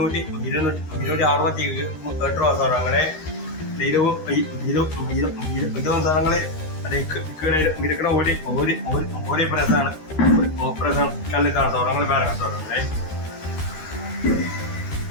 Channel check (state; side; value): late; right; 13 ms